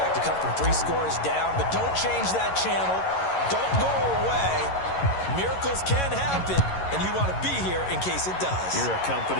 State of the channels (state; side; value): late; right; 11 ms